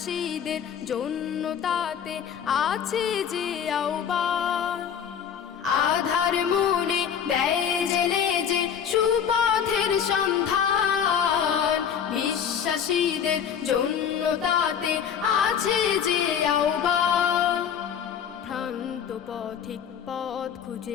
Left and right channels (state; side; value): quieter; right; 8.1 dB